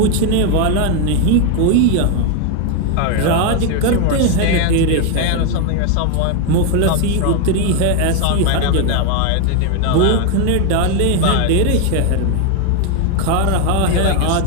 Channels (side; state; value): both; different; correlation 0.01